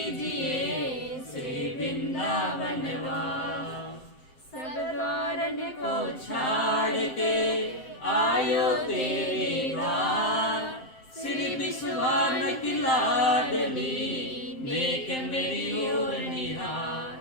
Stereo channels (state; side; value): late; right; 7.7 ms